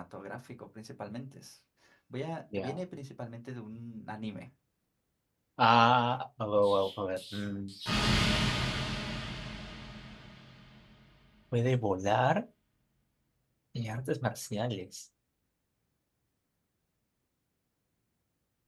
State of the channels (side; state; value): both; identical; correlation 1.00